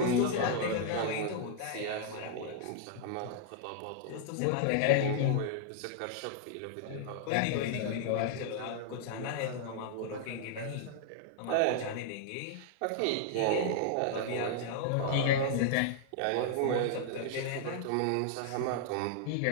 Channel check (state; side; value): different; both; correlation -0.01